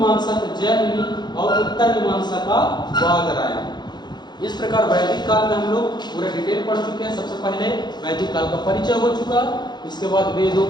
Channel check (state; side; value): late; right; 0.21 ms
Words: का जैमिनी और उत्तर मीमांसा का वादरायण। इस प्रकार वैदिक काल में हम लोग पूरा डिटेल पढ़ चुके हैं। सबसे पहले वैदिक काल का परिचय हो चुका, इसके बाद वेदों